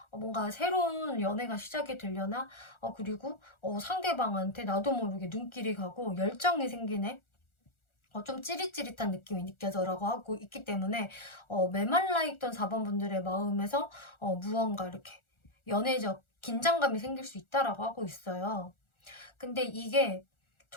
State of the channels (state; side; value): late; right; 1.4 ms